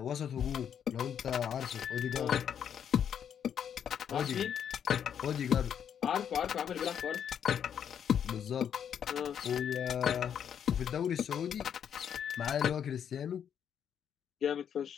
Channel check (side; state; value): right; quieter; 8.5 dB